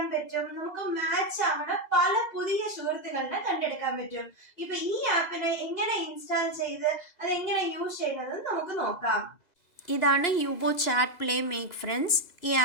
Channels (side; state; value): right; late; 2.0 ms